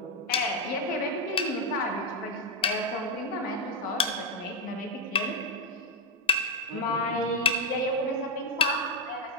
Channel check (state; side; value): normal; both; correlation 0.03